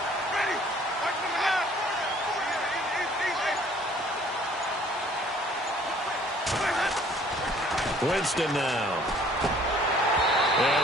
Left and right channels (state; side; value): normal; both; correlation 0.56